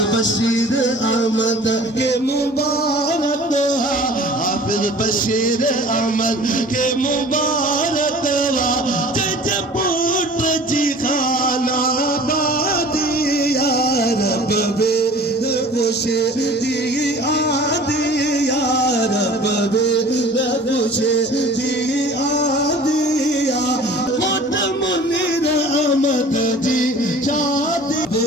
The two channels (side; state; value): both; normal; correlation 0.45